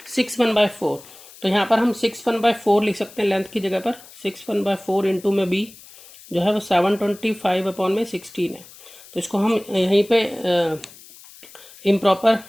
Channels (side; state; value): left; noise; hiss, 21 dB below the sound